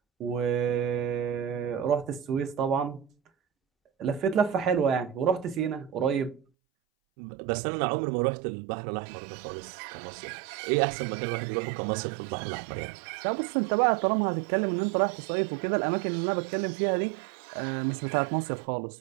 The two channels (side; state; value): left; drops out; at 6.5 s